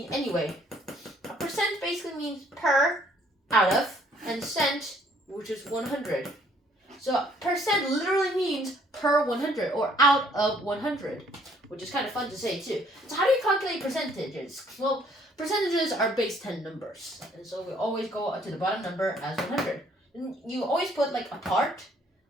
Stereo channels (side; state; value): both; normal; correlation 0.62